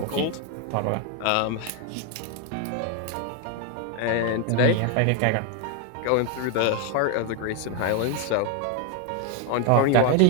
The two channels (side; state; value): both; different; correlation 0.01